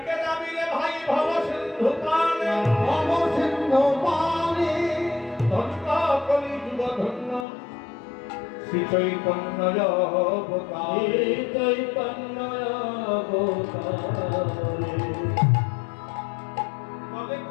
রে ভাই ভব সিন্ধু পানে, ভব সিন্ধু পানে, ধন্য কলিযুগ ধন্য শ্রী চৈতন্য অবতারে, চৈতন্য অবতারে। বলে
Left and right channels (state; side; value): drops out; right; at 7.5 s